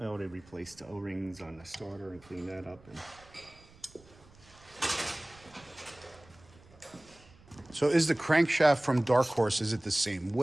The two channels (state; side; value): noise; right; rumble, 25 dB below the sound